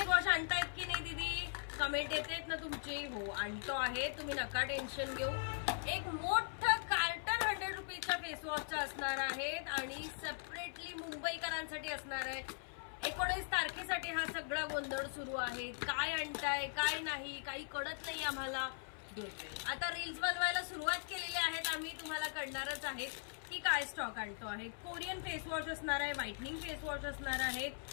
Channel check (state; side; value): silent; right; 51 dB below the other